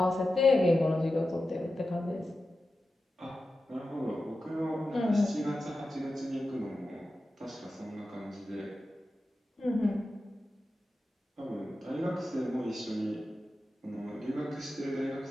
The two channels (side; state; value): both; normal; correlation 0.92